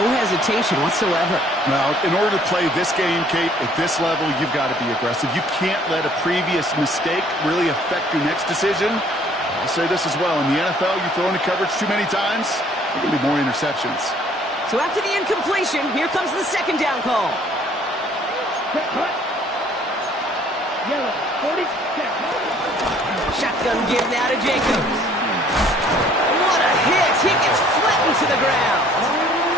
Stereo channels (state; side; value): normal; both; correlation 0.58